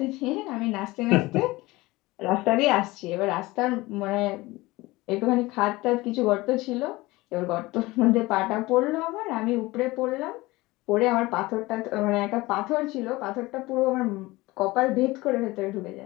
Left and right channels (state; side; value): quieter; right; 20.6 dB